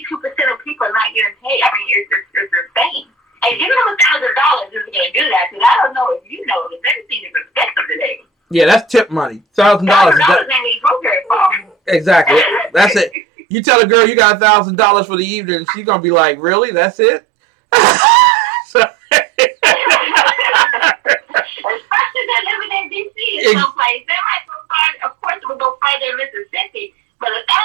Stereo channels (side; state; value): left; drops out; at 13.2 s